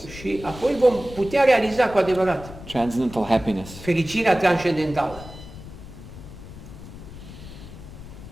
Și apoi vom putea realiza cu adevărat transcendental happiness. fericirea transcendentală.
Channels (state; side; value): noise; left; rumble, 14 dB below the sound